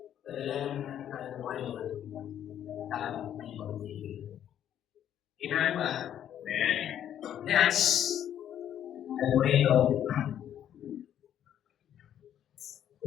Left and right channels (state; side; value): quieter; right; 10.3 dB